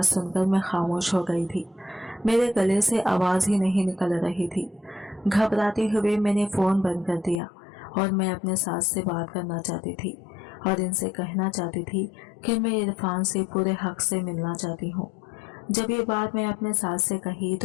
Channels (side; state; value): right; drops out; at 7.4 s